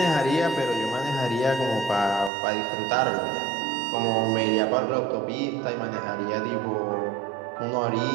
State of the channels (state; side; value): drops out; left; at 2.3 s